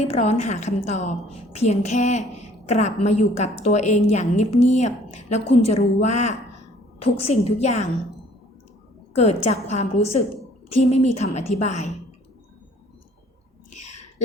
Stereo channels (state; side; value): normal; both; correlation 0.56